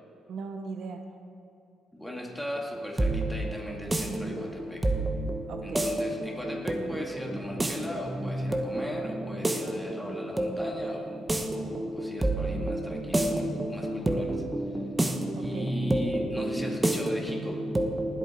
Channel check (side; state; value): both; normal; correlation 0.89